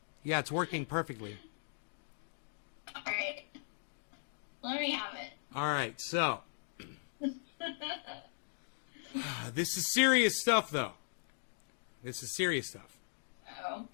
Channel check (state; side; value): silent; right; digital silence